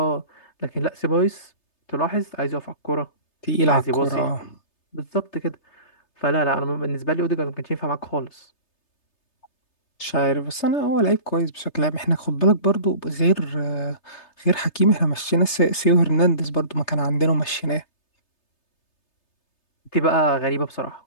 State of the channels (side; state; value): right; late; 3.3 ms